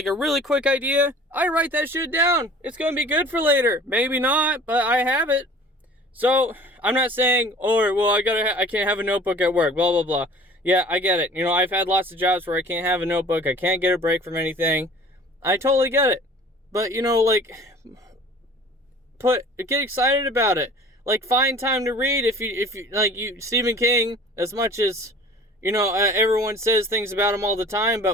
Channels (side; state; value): both; normal; correlation 0.46